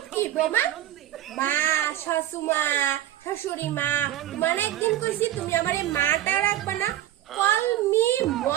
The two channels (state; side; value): quieter; left; 13.0 dB